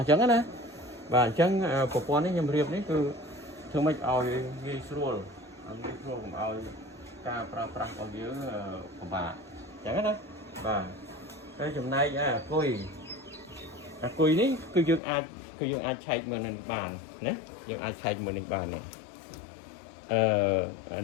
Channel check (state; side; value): drops out; right; at 15.0 s